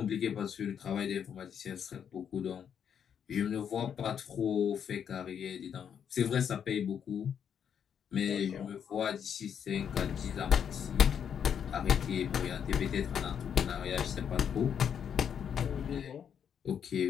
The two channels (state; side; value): quieter; right; 8.1 dB